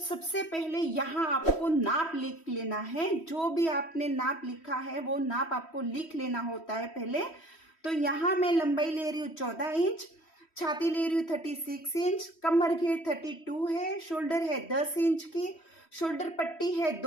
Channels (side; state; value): right; late; 3.1 ms